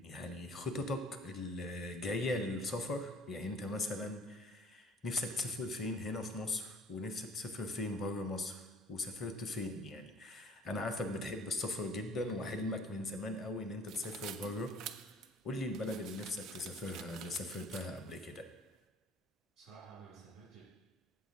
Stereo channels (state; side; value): normal; both; correlation 0.53